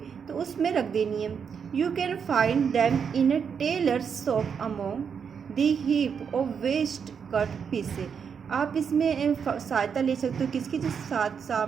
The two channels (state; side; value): quieter; left; 6.8 dB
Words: तो उसमें रख देनी है। You can find them in a tailor shop among the heap of waste cut pieces. आप इसमें सहायता ले सकते हो किसकी, जो साथ